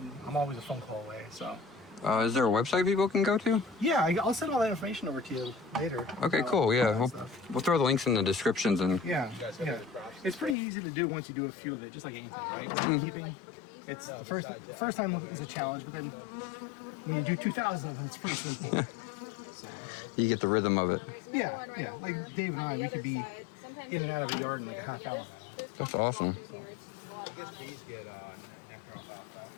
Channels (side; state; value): right; drops out; at 10.6 s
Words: I'm always a phone call away. So Is there a website people can go to? yeah, I'll send all that information over to you later. Okay, cool. all Yeah, that stuff. we'll throw the links in the descriptions and Yeah. It's pretty easy to do once you do a few of it, just like anything, right? Beekeeping. It's the first time is a challenge, but then when you do 2,000 of them, it's pretty simple. you get the rhythm of it. Yeah. Like Dave and I, we could be in and out of the yard in like a half hour. That's awesome. I guess bees get nectar off alfalfa.